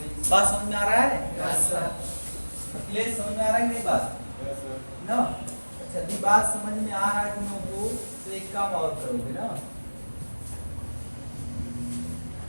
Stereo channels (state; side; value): inverted; both; correlation -1.00